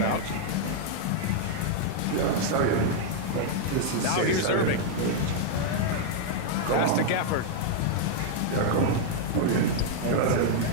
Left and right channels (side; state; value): both; different; correlation -0.01